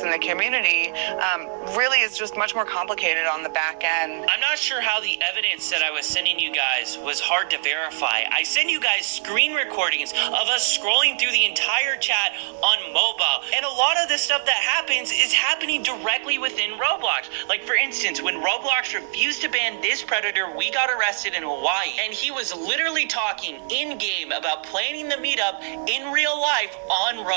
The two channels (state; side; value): silent; left; 63 dB below the other